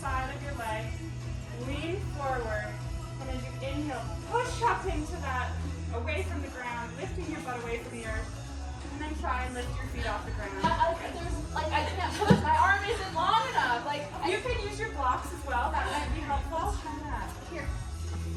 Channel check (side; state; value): both; identical; correlation 1.00